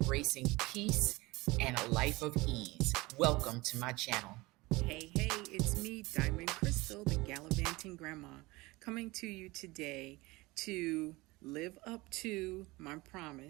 peace and a life of ease. Welcome to my channel. Hey, it's me, Diamond Crystal, the Gallivanting Grandma, coming to you today to live up to my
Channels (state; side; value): quieter; left; 21.9 dB